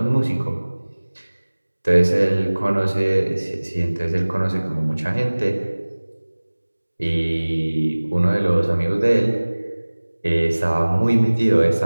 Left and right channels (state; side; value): inverted; both; correlation -1.00